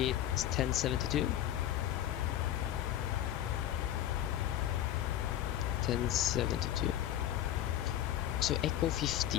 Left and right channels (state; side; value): quieter; right; 11.8 dB